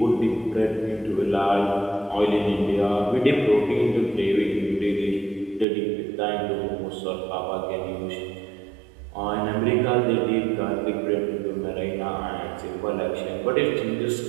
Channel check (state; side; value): drops out; left; at 5.7 s